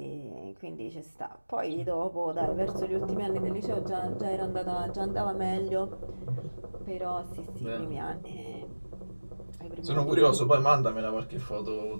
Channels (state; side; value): inverted; both; correlation -1.00